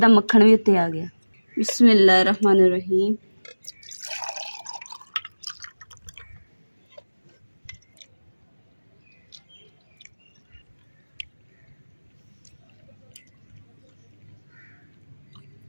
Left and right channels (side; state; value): both; inverted; correlation -1.00